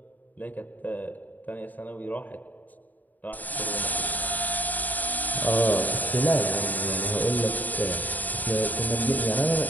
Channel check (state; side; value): late; right; 0.082 ms